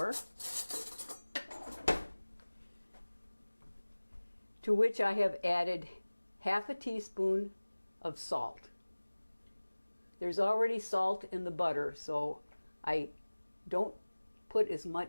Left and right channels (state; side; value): inverted; both; correlation -1.00